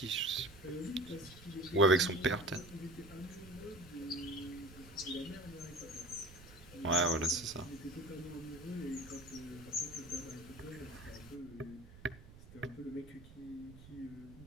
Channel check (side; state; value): right; noise; rumble, 18 dB below the sound